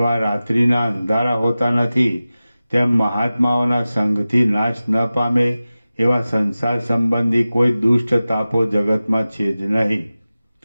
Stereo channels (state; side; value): inverted; both; correlation -0.96